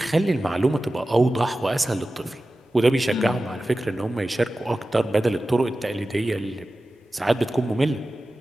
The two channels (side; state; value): both; normal; correlation 0.95